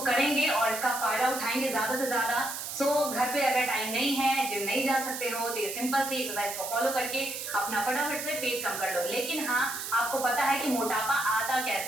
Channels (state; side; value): noise; right; hiss, 6 dB below the sound